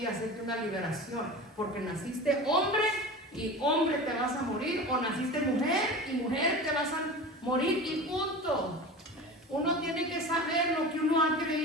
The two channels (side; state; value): both; normal; correlation 0.33